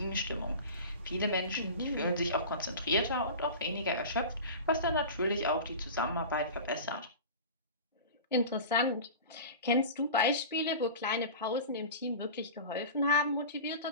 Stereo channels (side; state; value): both; inverted; correlation -0.33